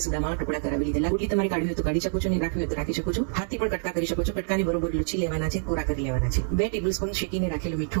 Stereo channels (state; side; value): silent; left; digital silence